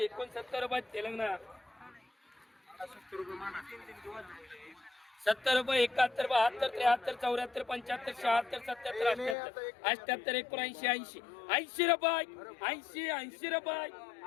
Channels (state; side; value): drops out; right; at 9.3 s